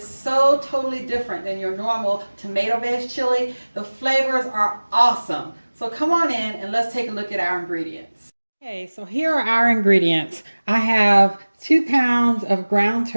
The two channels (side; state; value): both; inverted; correlation -1.00